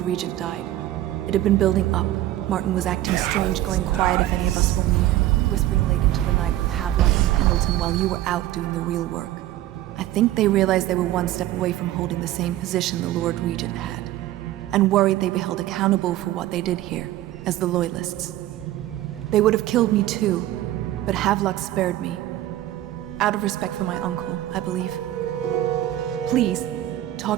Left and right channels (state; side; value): quieter; left; 14.2 dB